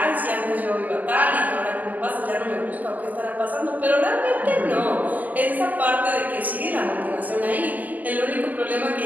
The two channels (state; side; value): late; left; 0.079 ms